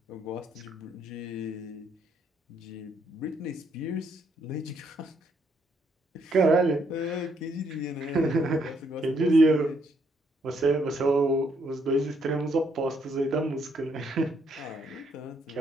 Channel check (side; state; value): both; normal; correlation 0.72